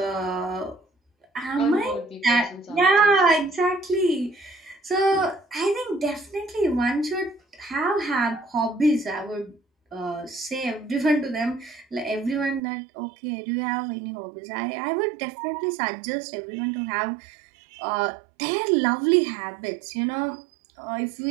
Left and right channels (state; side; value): drops out; left; at 12.6 s